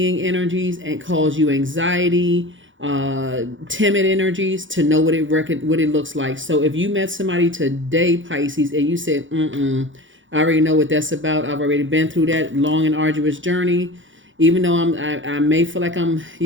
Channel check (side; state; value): left; late; 0.56 ms